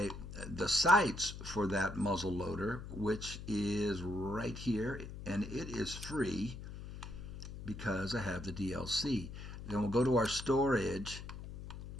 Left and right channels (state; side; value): noise; left; hum, 10 dB below the sound